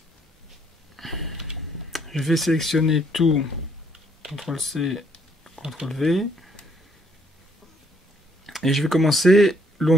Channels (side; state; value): both; normal; correlation 0.67